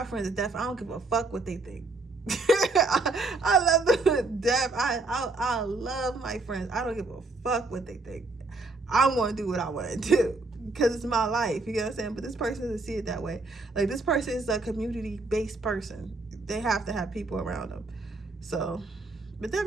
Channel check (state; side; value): quieter; left; 3.3 dB